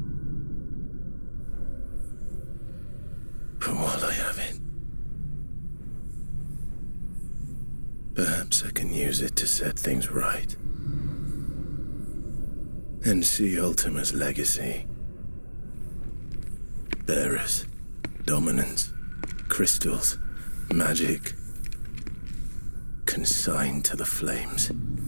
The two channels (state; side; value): inverted; both; correlation -1.00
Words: But while I have it, perhaps I can use it to set things right. And see Ultima's legacy. Bearers, dominance, crystals, magic, consigned to the flames.